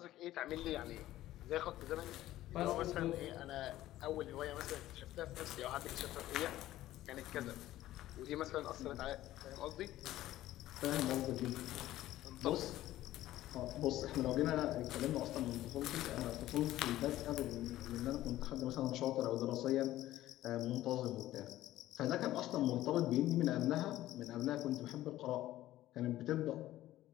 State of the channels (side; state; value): right; quieter; 14.7 dB